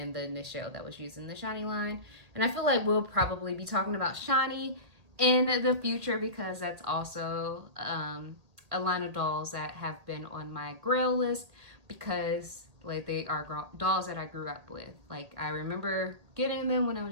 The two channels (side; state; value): left; late; 1.8 ms